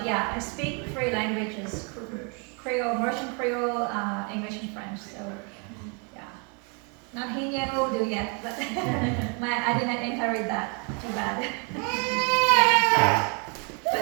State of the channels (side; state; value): left; quieter; 35.7 dB